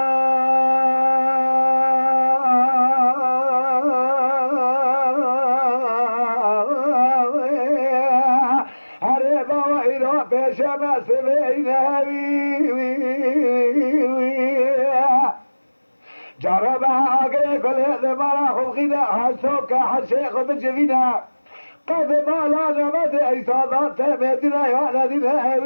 شمس جرب عقل كل هذا مرا خلقنا حسوك حشيخ بجفينا قد ما لا نمد إيصادات مدينة يا ندينا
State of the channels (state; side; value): inverted; both; correlation -1.00